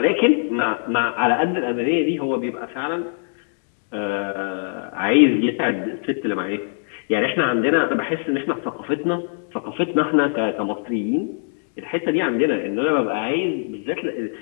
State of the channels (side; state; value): right; silent; digital silence